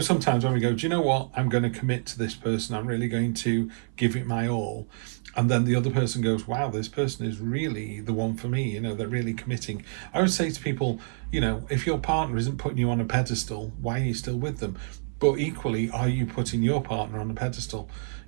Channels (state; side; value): silent; left; 59 dB below the other